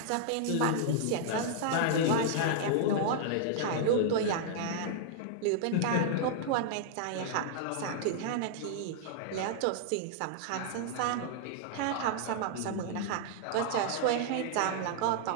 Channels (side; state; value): both; different; correlation -0.01